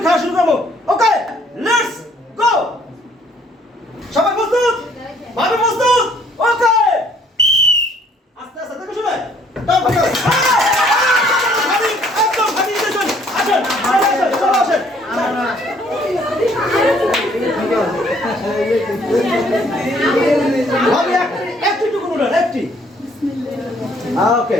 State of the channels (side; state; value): both; normal; correlation 0.62